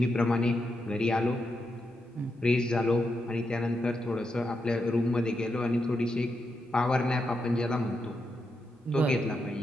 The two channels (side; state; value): both; normal; correlation 0.84